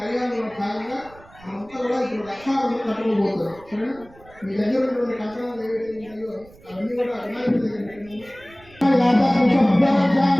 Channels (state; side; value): noise; right; rumble, 24 dB below the sound